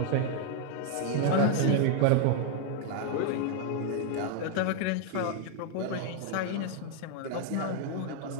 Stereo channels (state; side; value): different; both; correlation 0.00